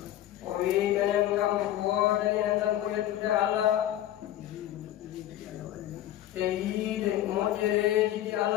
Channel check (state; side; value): quieter; right; 12.8 dB